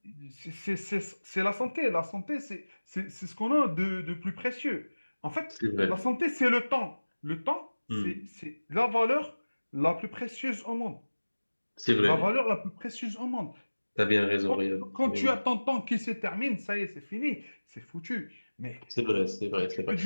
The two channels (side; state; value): both; inverted; correlation -1.00